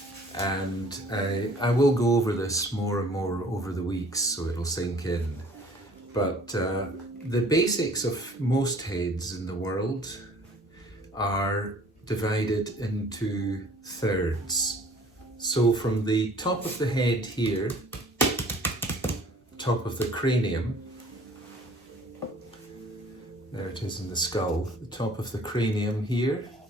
and I will go over this more and more over the weeks so it'll sink in, but the basics of most heads in the world are divided into thirds. So from the top of the head here, top of the cranium, there it is in the skull, the top of the cranium here,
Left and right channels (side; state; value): both; normal; correlation 0.53